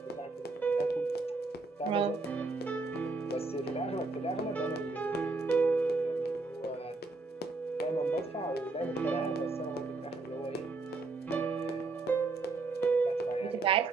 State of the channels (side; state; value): left; quieter; 3.6 dB